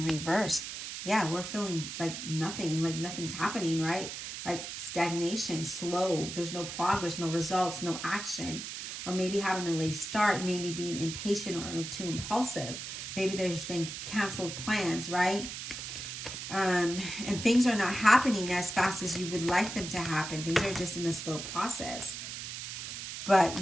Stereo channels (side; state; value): right; noise; hiss, 7 dB below the sound